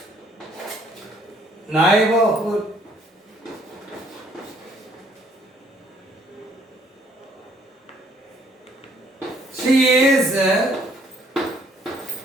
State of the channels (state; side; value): normal; both; correlation 0.64